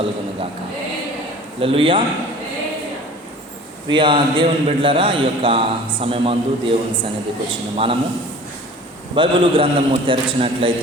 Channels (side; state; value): both; normal; correlation 0.44